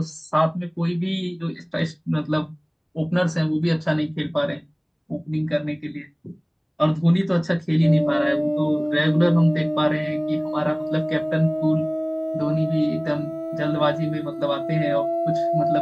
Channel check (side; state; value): both; identical; correlation 1.00